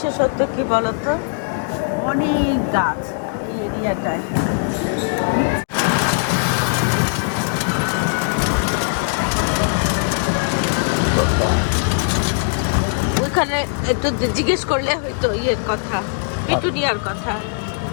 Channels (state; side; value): silent; right; digital silence